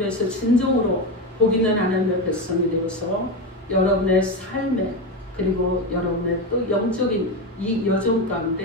진정으로 복 있는 하나님의 백성이 되어서 여러분의 삶에 그리고 여러분의 또 영적인 이 여정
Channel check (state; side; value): normal; both; correlation 0.16